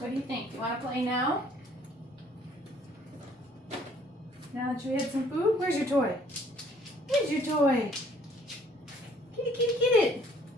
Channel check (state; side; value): normal; both; correlation 0.60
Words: do you think? You want to play now? Now that you had some food? Where's your toy? Where's your toy? Kitty, kitty, get it.